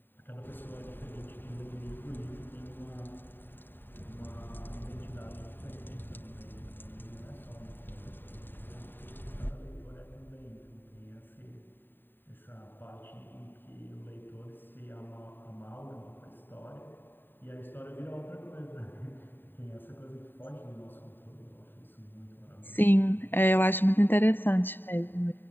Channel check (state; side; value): late; right; 0.094 ms